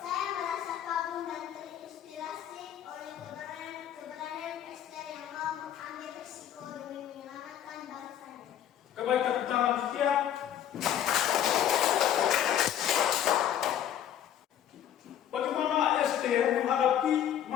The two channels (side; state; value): right; quieter; 10.4 dB